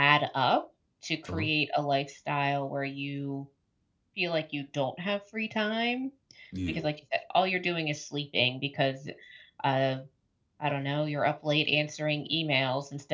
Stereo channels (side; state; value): both; identical; correlation 1.00